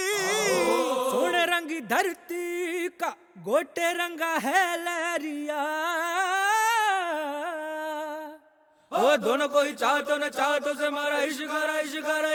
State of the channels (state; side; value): identical; both; correlation 1.00